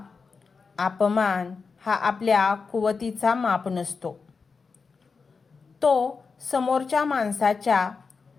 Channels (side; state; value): right; quieter; 4.9 dB